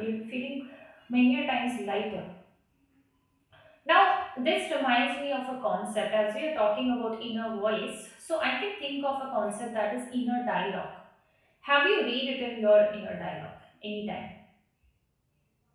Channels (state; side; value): identical; both; correlation 1.00